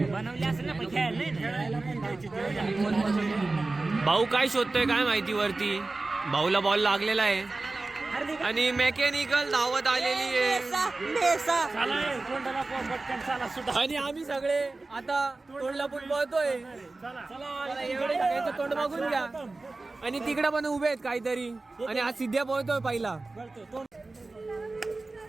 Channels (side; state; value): left; quieter; 3.3 dB